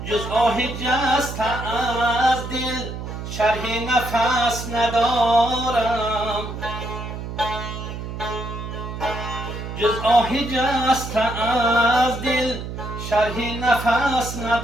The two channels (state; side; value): noise; right; hum, 7 dB below the sound